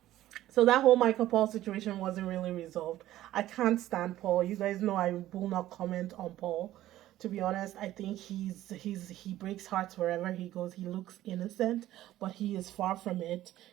So that whole Michael Paul situation wasn't really resolved. I can't stand Paul. You guys know I will not comment on Paul. To be honest, I think he breaks hearts wherever he goes. He looks innocent, but he is far from it,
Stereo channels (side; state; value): left; quieter; 14.3 dB